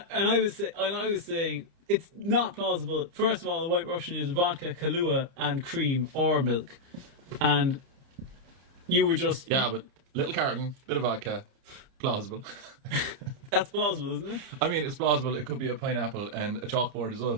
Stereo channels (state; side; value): late; left; 30 ms